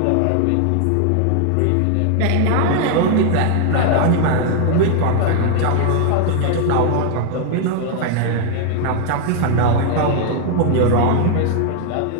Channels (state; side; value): different; both; correlation 0.00